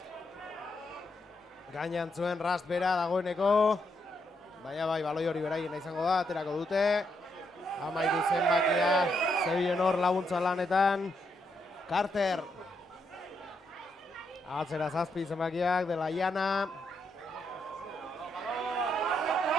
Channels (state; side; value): normal; both; correlation 0.79